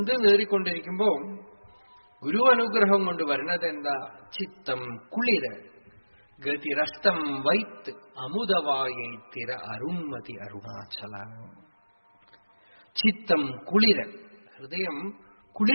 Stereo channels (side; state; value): both; inverted; correlation -1.00